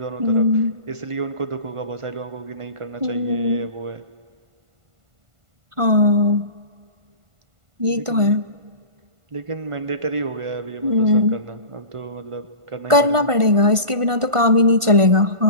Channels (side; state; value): left; late; 1.5 ms